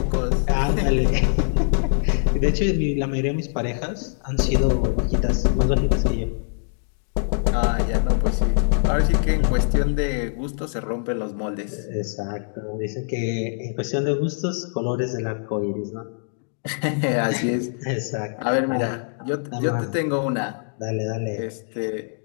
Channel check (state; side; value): silent; right; digital silence